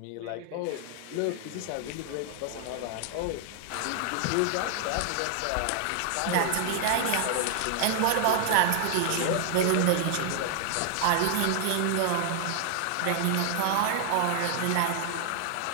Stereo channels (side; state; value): both; different; correlation 0.00